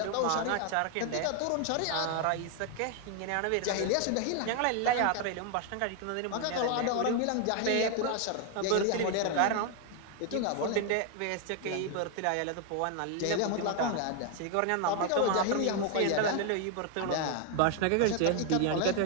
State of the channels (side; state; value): both; different; correlation 0.00